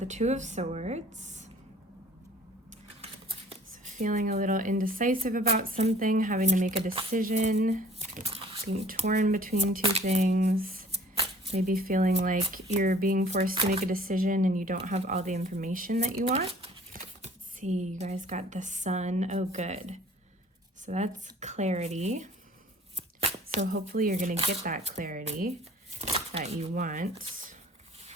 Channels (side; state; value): both; normal; correlation 0.52